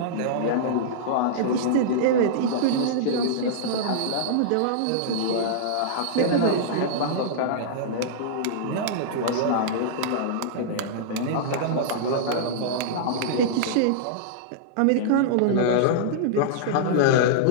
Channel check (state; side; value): different; both; correlation -0.02